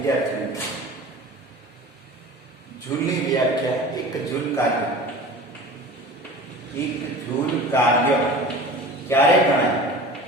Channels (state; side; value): normal; both; correlation 0.38